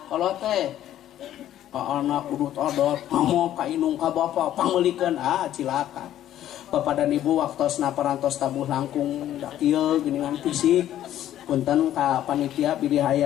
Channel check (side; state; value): right; quieter; 12.1 dB